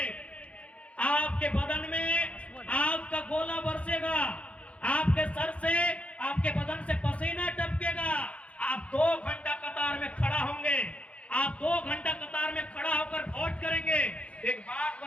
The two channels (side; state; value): right; late; 0.063 ms